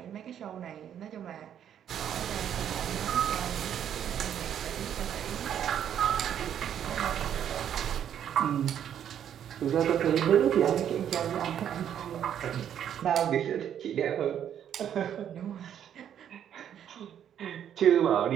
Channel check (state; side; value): quieter; left; 9.6 dB